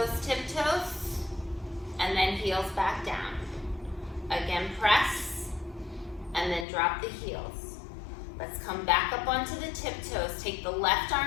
tiptoes, and then heels back down. Again, press, and then drop the heels. Let's come back up onto the tiptoes. Take the left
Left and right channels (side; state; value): right; drops out; at 6.7 s